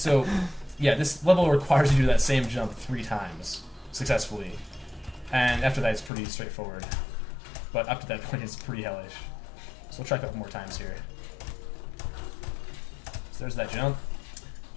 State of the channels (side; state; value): right; drops out; at 6.1 s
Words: yeah, this level requires you to do that same jump 3 times successfully. And after that, it's pretty straightforward. But up to that point, it's pretty hellish. So, we'll try a couple more times here. So there's that jump.